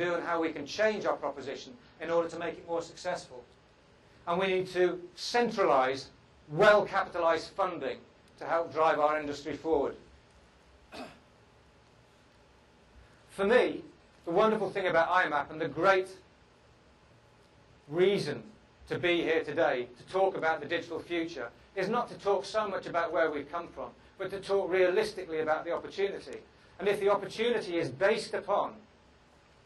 and how we can change our proposition in order to make it more successful. And we need to centralise well-capitalised funding to help drive our industry forward. For me, the wonderful thing about IMAP and the great reason to be here today to talk about the digital future is not to talk so much about where we've come from, but to talk realistically about the opportunity. And if the opportunity is based upon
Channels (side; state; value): both; identical; correlation 1.00